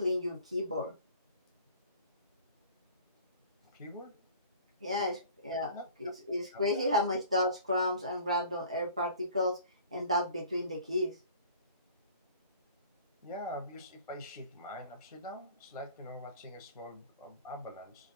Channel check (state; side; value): inverted; both; correlation -0.47